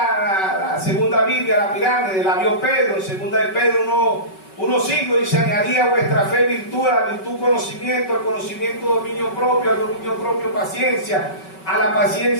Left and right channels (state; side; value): late; right; 5.3 ms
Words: la segunda Biblia, la pirámide, la vio Pedro, en segunda de Pedro 1:5 dice, añadía a vuestra fe virtud, a la virtud conocimiento, al conocimiento dominio propio, al dominio propio paciencia, a la